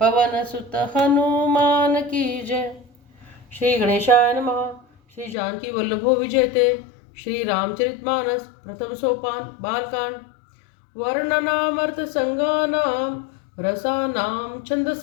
पवन सुत हनुमान की जय। श्री गणेशाय नमः। श्री जानकी वल्लभो विजयते। श्री रामचरितमानस प्रथम सोपान बालकांड। वर्णनामर्थ संगानाम रसानाम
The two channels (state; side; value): drops out; right; at 5.4 s